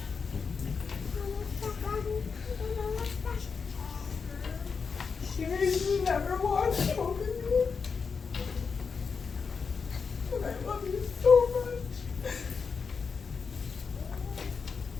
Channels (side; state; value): right; quieter; 5.4 dB